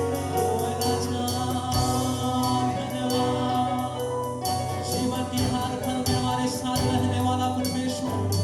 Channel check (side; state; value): both; identical; correlation 1.00